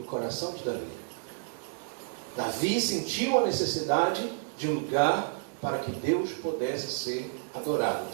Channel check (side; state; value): left; silent; digital silence